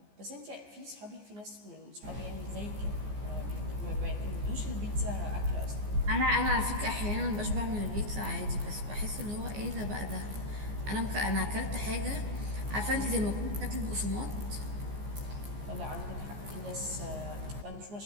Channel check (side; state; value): left; late; 14 ms